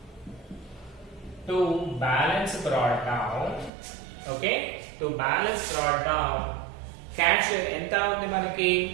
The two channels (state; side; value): drops out; left; at 3.7 s